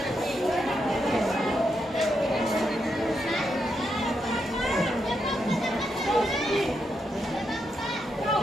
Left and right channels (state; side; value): normal; both; correlation 0.82